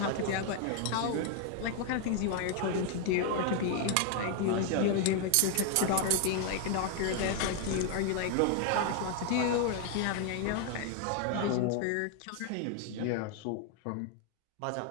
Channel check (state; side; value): different; both; correlation 0.00